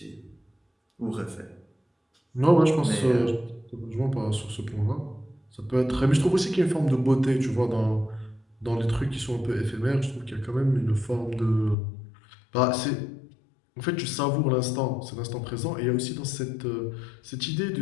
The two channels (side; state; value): right; drops out; at 11.8 s